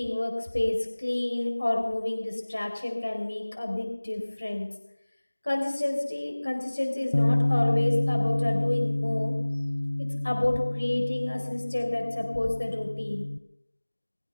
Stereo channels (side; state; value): both; inverted; correlation -1.00